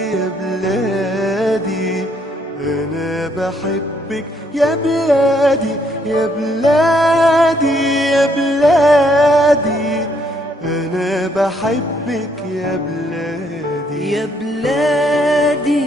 يا بلادي أنا بحبك يا بلادي يا بلادي يا بلادي أنا بحبك يا بلادي يا بلادي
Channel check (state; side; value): normal; both; correlation 0.70